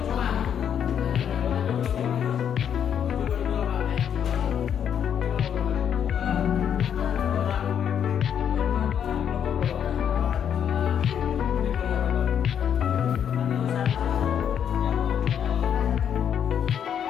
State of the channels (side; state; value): right; quieter; 8.7 dB